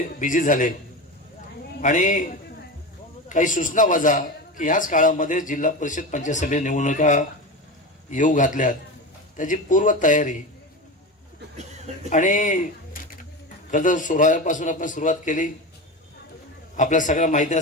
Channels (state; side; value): normal; both; correlation 0.24